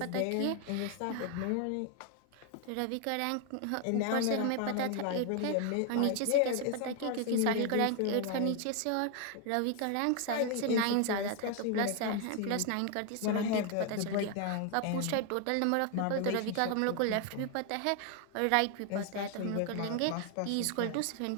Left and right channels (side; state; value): both; different; correlation 0.00